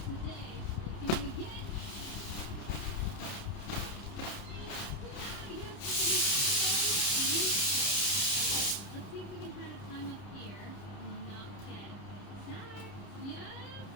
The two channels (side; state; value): right; late; 30 ms